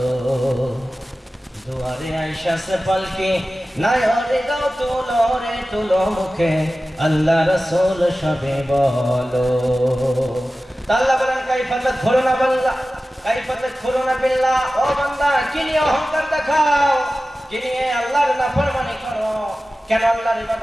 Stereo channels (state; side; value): normal; both; correlation 0.95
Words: দুয়ারে আইসা সে পালকি নাই রে গাও তুলো রে তুলো মুখে আল্লাহ রাসূল সবে বলো। আল্লাহ বলেন কাইফা তাদখুলুনা বান্দা, কাইফা তাদখুলুনা বিল্লাহ, ও বান্দা কি নিয়ে অহংকার দেখাও, কি নিয়ে আল্লাহর নাফরমানি করো, কেন আল্লাহর